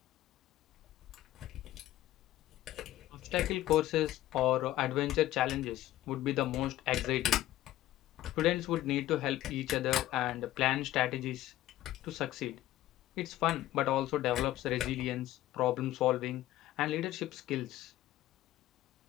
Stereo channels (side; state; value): right; quieter; 14.7 dB